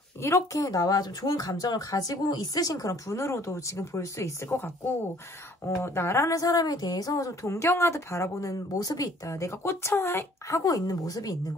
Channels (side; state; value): both; normal; correlation 0.57